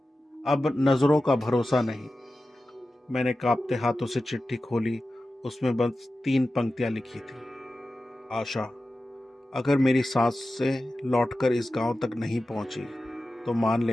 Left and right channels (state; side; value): normal; both; correlation 0.94